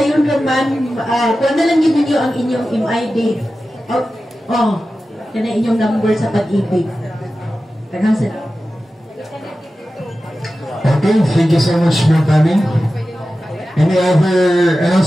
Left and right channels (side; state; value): both; normal; correlation 0.94